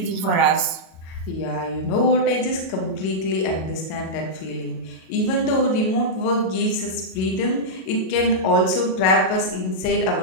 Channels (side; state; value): right; late; 37 ms